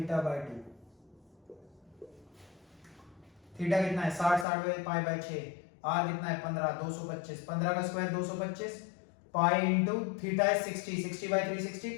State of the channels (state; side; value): drops out; right; at 4.5 s